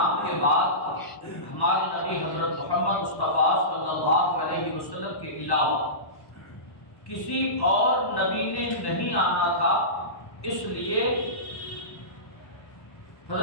کے بعد ہمارے نبی حضرت محمد مصطفیٰ صلی اللہ علیہ وسلم کے علاوہ کسی اور نبی نے نہیں آنا تھا، اس لیے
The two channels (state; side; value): late; right; 1.1 ms